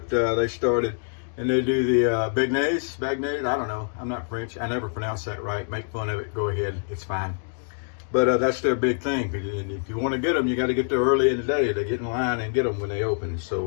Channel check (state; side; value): silent; right; digital silence